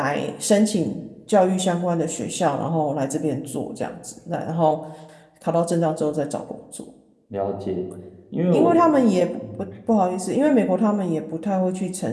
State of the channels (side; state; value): both; identical; correlation 1.00